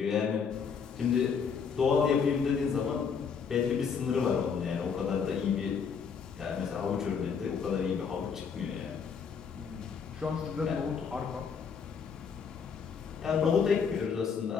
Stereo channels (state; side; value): quieter; right; 6.3 dB